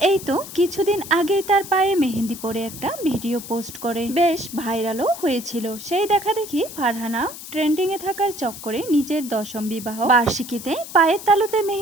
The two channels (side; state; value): left; noise; hiss, 12 dB below the sound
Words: এই তো কিছুদিন আগেই তার পায়ে মেহেদি পরে একটা ভিডিও পোস্ট করে বেশ ভাইরালও হয়েছিল। সেই দেখা দেখি ফারহানা ট্রেন্ডিং এ থাকার চক্করে নিজের 10ম বিবাহ বার্ষিকীতে পায়ের তালুতে